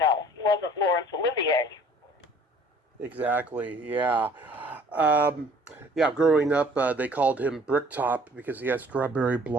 wasn't Laurence Olivier. Exactly, yeah. Yeah, growing up, they called him Bricktop because he had strawberry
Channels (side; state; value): both; normal; correlation 0.54